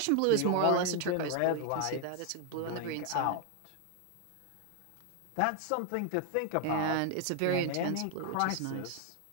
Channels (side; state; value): both; different; correlation 0.00